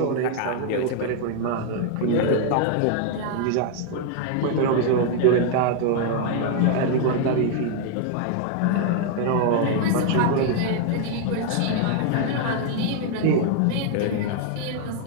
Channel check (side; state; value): both; different; correlation 0.00